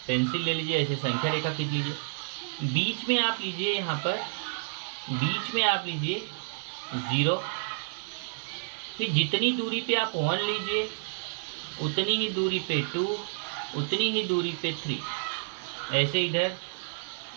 पेंसिल ले लीजिए, ऐसे संख्या रेखा खींच लीजिए। बीच में आप लीजिए, यहाँ पर बीच में आप लीजिए 0। फिर जितनी दूरी पे आप 1 लीजिए, उतनी ही दूरी पे 2, उतनी ही दूरी पे 3, ऐसे इधर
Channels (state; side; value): silent; left; 58 dB below the other